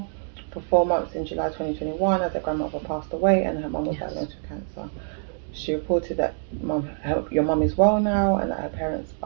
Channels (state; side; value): silent; left; digital silence